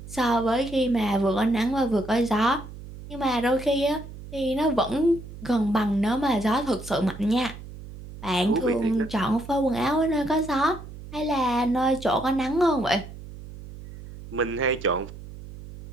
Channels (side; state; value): right; noise; hum, 14 dB below the sound